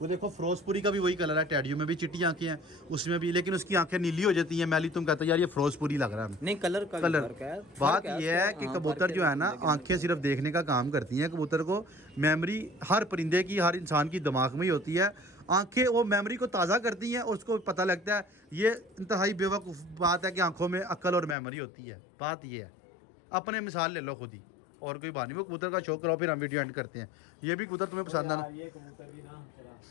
देखो फिरोजपुरी का भी वही कलर है, टेडियो में भी चिट्टी आंखें हैं, उसमें भी, लेकिन उसकी आंखें नीली हो जाती हैं मैली। तुम कहते हो यार ये फिरोजपुरी लग रहा है। नहीं, कलर बात यह है कि कबूतर जो है ना, आंखें सिर्फ देखने का काम करती हैं कबूतर को। मेमोरी हर परिंदे की, हर इंसान की दिमाग में ही होती है। आंखें वो मेमोरी को ताज़ा करती हैं और उसको पता लगता है। ये इंतहाई बेवकूफ़ बात है कि आंखों में अक्ल और मेमोरी होती है। बात ये है, अपने मिसाल ले लो खुद ही, और कोई बात नहीं। वो कबूतर का शौक करो, फिर हम वीडियो एंड करते हैं। ये भी कबूतर तुम्हें पसंद है ना? ये कबूतर भी ना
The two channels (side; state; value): right; drops out; at 21.4 s